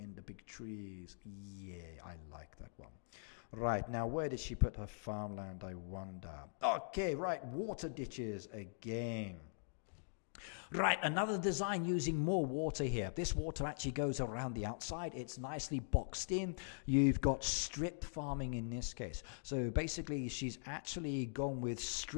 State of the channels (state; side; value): silent; right; digital silence